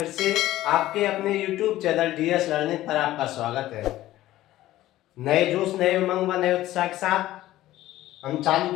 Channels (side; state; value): right; quieter; 15.0 dB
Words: से आपके अपने YouTube चैनल DS लर्निंग पर आपका स्वागत है। नए जोश, नए उमंग व नए उत्साह के साथ हम चालू